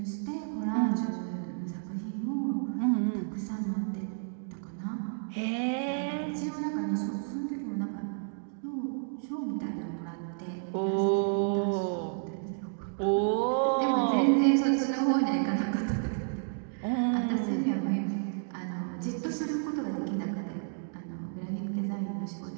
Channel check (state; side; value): silent; left; digital silence